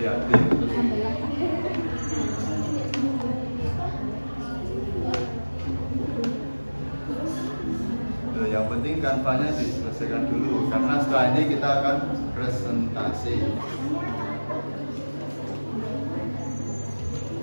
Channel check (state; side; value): inverted; both; correlation -1.00